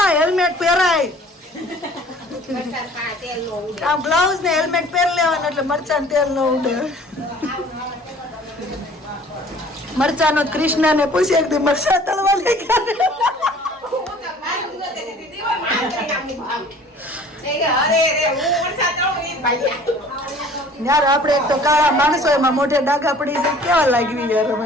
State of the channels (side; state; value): both; normal; correlation 0.51